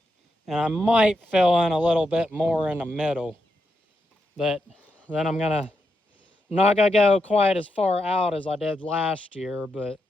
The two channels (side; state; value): both; normal; correlation 0.83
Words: And I might fill in a little bit more in the middle. But then I'm not going to go quite as far out as I did last year, but